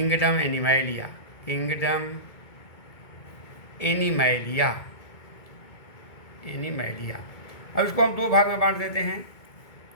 एनिमैलिया, अब इसको हम दो भाग में बांट देते हैं।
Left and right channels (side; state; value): right; late; 2.2 ms